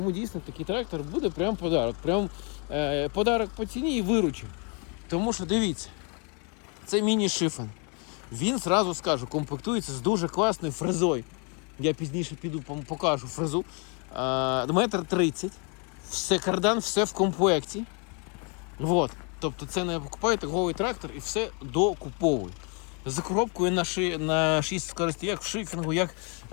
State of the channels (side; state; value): right; quieter; 35.3 dB